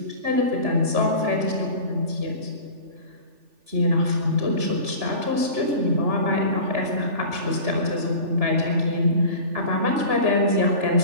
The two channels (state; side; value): late; left; 3.4 ms